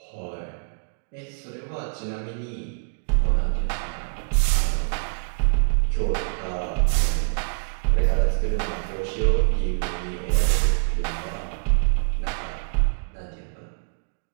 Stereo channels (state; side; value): silent; left; digital silence